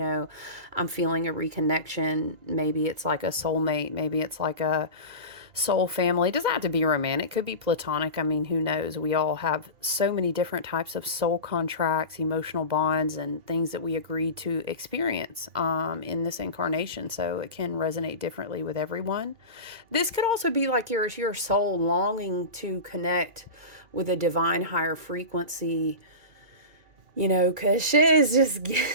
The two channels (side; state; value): left; late; 2.4 ms